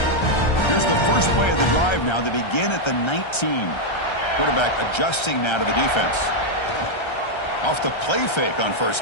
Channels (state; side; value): late; right; 1.3 ms